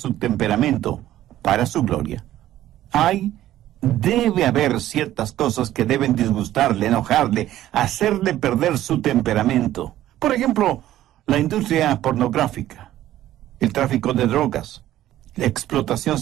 temperamento para su gloria. Debe haber ciertas cosas que deben disgustarle, enojarle, hacerle perder su temperamento. Por ejemplo, la industria pornográfica, el tráfico de drogas, la explotación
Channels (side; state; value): left; quieter; 13.5 dB